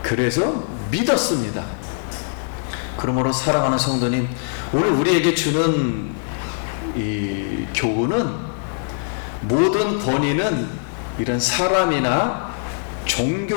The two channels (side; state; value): right; silent; digital silence